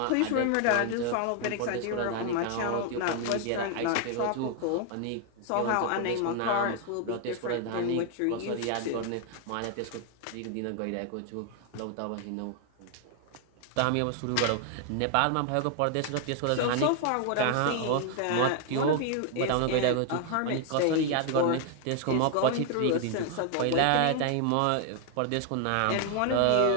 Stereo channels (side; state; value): both; different; correlation 0.00